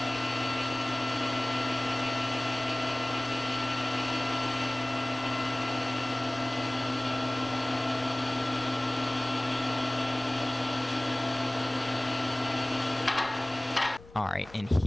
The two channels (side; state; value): left; noise; rumble, 21 dB below the sound